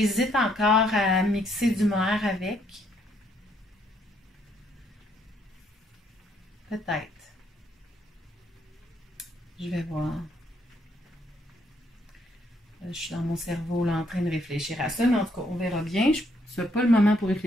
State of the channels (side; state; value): both; normal; correlation 0.71